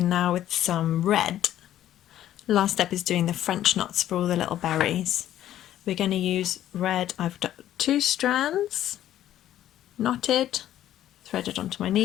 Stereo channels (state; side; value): quieter; right; 12.3 dB